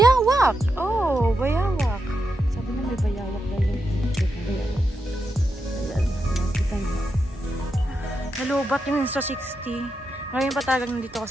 Oh, bayawak. Sabi na may bayawak na yung bayawak. Ayan, nakita niyo. Nalubat yung Insta360. Ngayon pa talagang nandito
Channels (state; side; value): normal; both; correlation 0.86